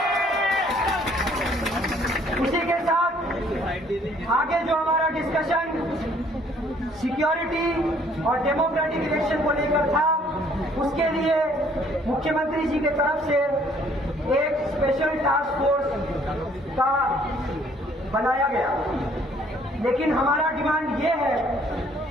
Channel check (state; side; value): normal; both; correlation 0.61